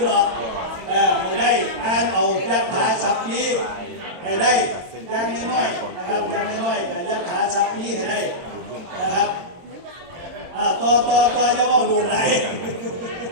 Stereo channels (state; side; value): late; left; 22 ms